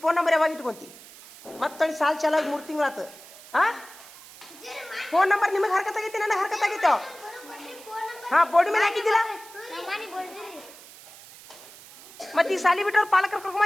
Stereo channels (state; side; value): noise; right; hiss, 19 dB below the sound